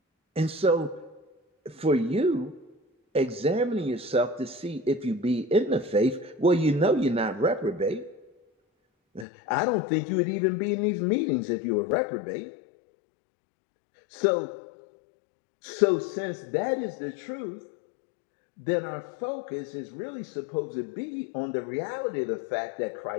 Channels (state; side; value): drops out; right; at 9.2 s